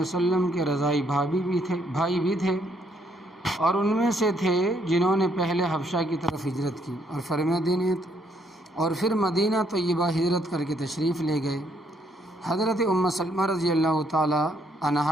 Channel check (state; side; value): normal; both; correlation 0.70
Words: کے رضائی بھائی بھی تھے، اور ان میں سے تھے جنہوں نے پہلے حبشہ کی طرف ہجرت کی اور پھر مدینہ طیبہ ہجرت کر کے تشریف لے گئے۔ حضرت ام سلمہ رضی اللہ تعالیٰ